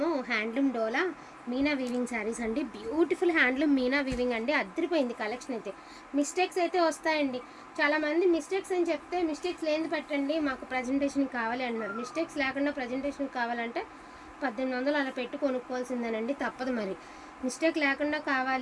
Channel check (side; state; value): both; identical; correlation 1.00